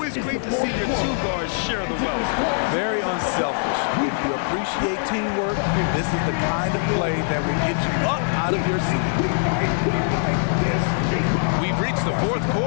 great to see your two guards share the wealth. Very unselfish. If you appreciate teamwork, this is the kind of play that will get you up out of your seat. We've reached the fourth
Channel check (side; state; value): right; silent; 63 dB below the other